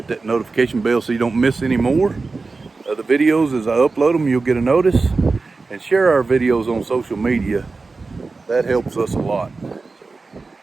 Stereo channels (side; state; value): left; quieter; 3.9 dB